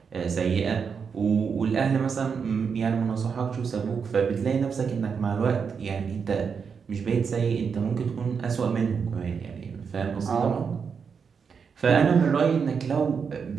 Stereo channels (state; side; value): quieter; left; 6.1 dB